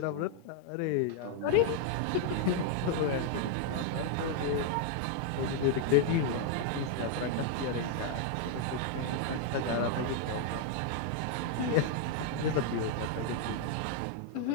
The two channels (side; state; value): both; different; correlation 0.00